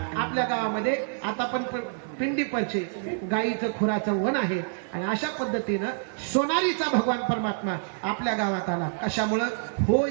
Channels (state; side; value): silent; left; digital silence